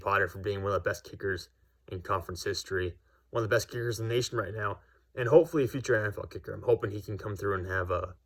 for being one of the best kickers in conference history, one of the best kickers in the nation right now, and hopefully a future NFL kicker. I'm hoping he can come through and have a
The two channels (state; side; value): identical; both; correlation 1.00